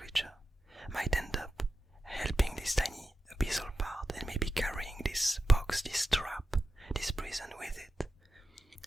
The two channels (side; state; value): both; normal; correlation 0.91